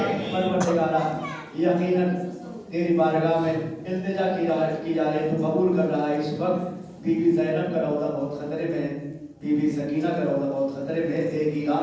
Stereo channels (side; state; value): both; identical; correlation 1.00